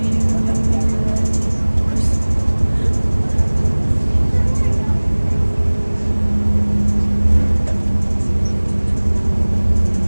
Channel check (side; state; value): both; inverted; correlation -1.00